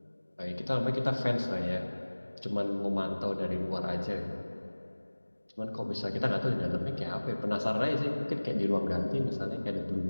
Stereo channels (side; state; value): both; inverted; correlation -1.00